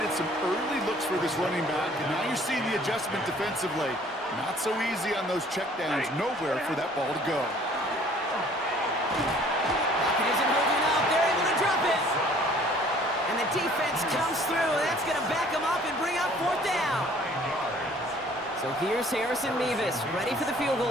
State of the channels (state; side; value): normal; both; correlation 0.55